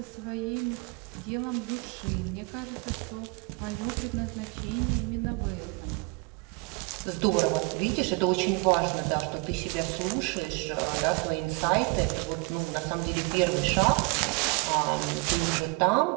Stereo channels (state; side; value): quieter; left; 28.5 dB